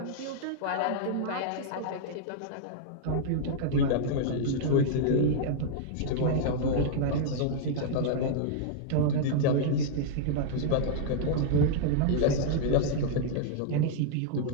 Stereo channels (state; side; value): different; both; correlation -0.01